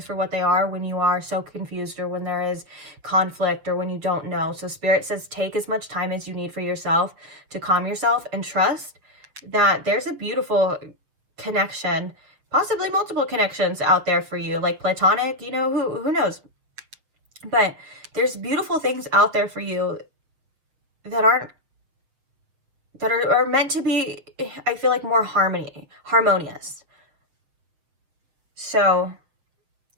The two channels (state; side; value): late; left; 7.3 ms